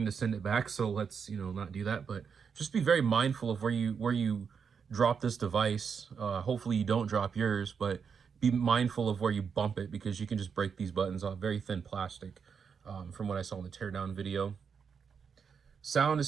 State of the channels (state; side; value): quieter; left; 6.4 dB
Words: to send it back, so let's not do that. But just be very mindful of where you drop this device. Hopefully you don't drop yours, but be mindful of where you bump it, because you can just break these buttons off. Very thin plastic, from what I saw in the teardown video. Sound